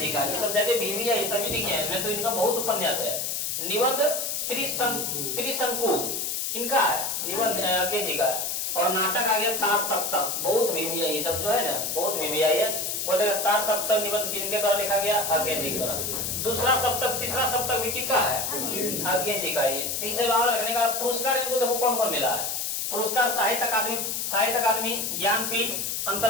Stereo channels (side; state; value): left; noise; hiss, 1 dB below the sound